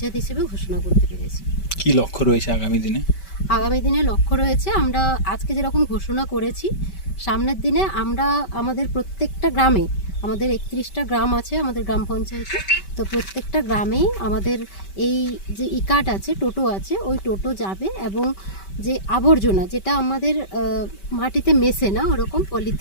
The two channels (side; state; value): right; late; 5.2 ms